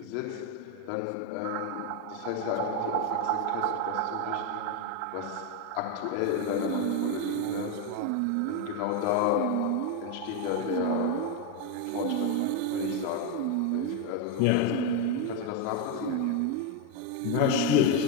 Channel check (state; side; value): different; both; correlation 0.02